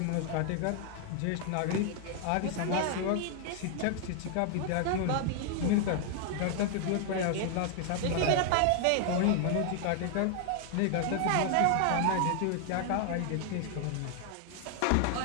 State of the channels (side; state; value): both; different; correlation 0.00